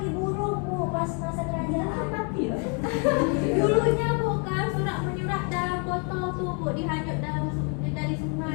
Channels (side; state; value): right; quieter; 38.0 dB